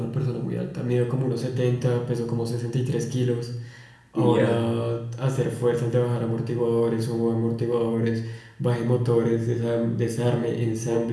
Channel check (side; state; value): both; identical; correlation 1.00